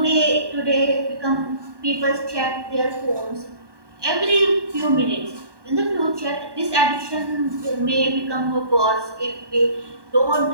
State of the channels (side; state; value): left; late; 1.2 ms